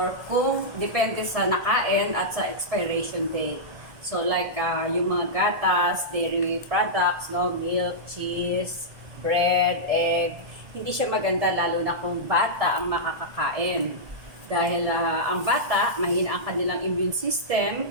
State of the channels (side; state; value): left; late; 1.7 ms